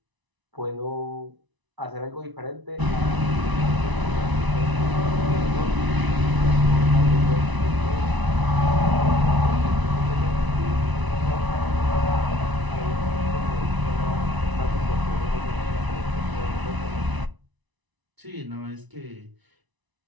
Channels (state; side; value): late; left; 1.0 ms